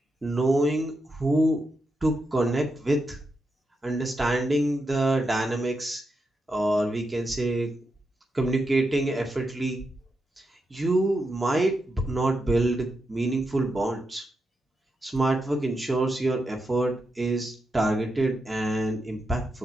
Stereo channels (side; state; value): both; normal; correlation 0.85